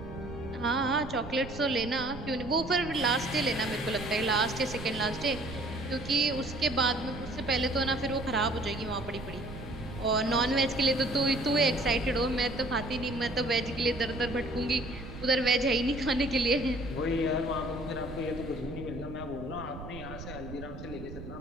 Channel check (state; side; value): noise; right; rumble, 11 dB below the sound